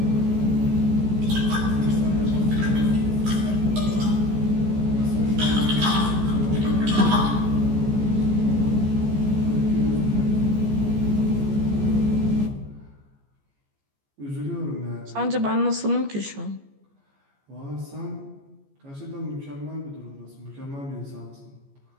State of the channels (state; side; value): late; left; 14 ms